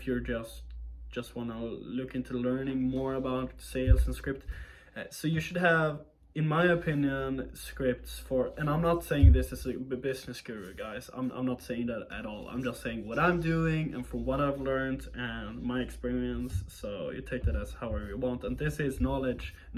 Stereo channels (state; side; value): identical; both; correlation 1.00